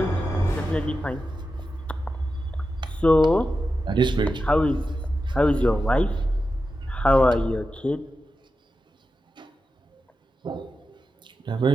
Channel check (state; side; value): normal; both; correlation 0.91